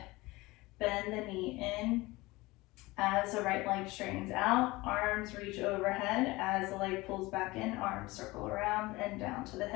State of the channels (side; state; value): right; quieter; 21.2 dB